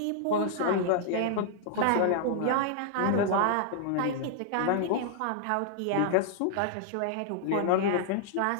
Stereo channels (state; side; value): different; both; correlation -0.01